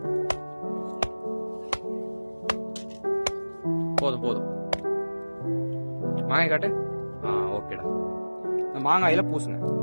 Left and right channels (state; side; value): inverted; both; correlation -1.00